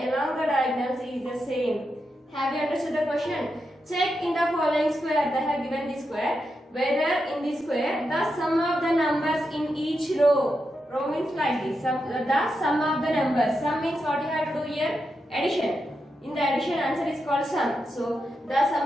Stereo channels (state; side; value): normal; both; correlation 0.86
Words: along the diagonals is the same. Have you understood the question? Check in the following square. They have given the square. Whether in the square the sum of the numbers in each row. Row means like this. The sum of the numbers. Sum means what you have to do here? Addition. In the addition, answer is called sum. So the